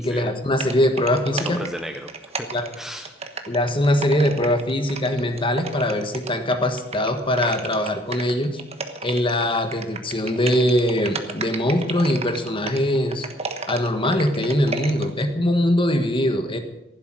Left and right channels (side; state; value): both; normal; correlation 0.61